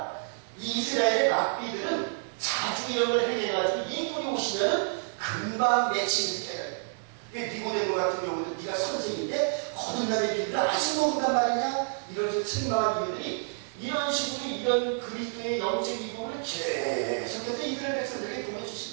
이스라엘의 랍비들은 자주형을 행해가지고 이분이 오시면은 금방 맺히는 깨달아요. 니고데모 같은 경우도 네가 선생인데 거듭남의 비밀을 아직 모른단 말이냐? 이런 식으로 책망한 이유들이 이런 식으로 이런 그리스도의 영적 이부분을 계속해서 이스라엘 백성들에게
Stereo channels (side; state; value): left; silent; digital silence